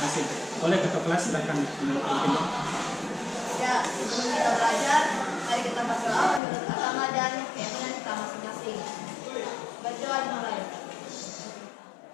Oleh ketua kelas silakan menutup. Ya, sebelum kita belajar, mari kita berdoa menurut agama dan keyakinan kita masing-masing. Berdoa dimulai.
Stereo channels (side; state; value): right; drops out; at 6.4 s